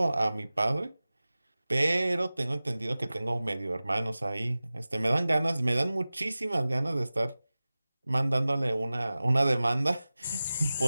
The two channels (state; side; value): inverted; both; correlation -0.97